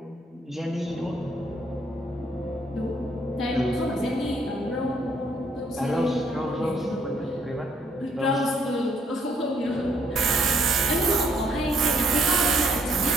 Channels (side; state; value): both; normal; correlation 0.68